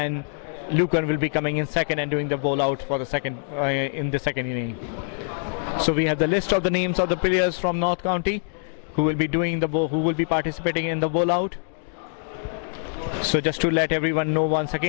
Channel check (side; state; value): right; silent; 62 dB below the other